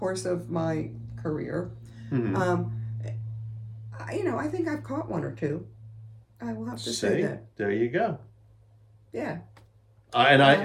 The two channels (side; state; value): both; identical; correlation 1.00